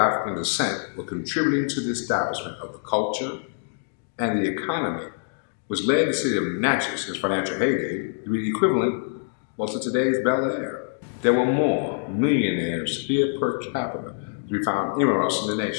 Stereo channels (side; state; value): right; silent; digital silence